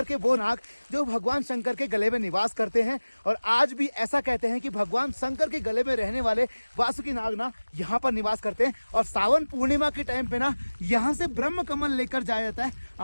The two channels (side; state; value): both; inverted; correlation -1.00